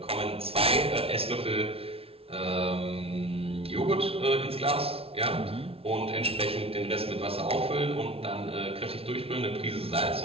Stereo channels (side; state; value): left; late; 0.27 ms